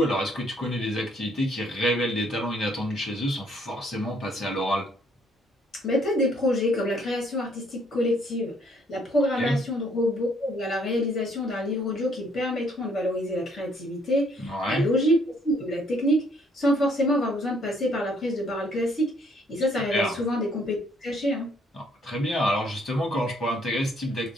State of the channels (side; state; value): both; normal; correlation 0.66